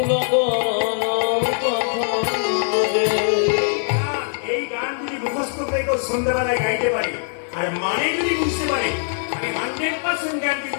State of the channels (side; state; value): right; silent; digital silence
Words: এই গান যদি মুখস্থ করে কেউ সন্ধ্যাবেলায় গাইতে পারে আর মানে যদি বুঝতে পারে, আমি 100% গ্যারান্টি